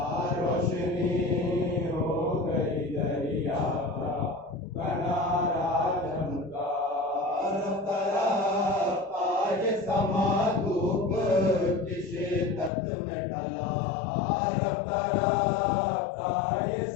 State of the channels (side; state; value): right; drops out; at 12.7 s